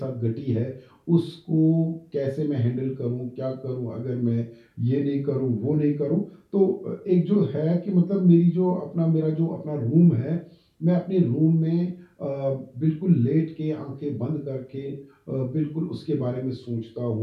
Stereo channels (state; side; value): identical; both; correlation 1.00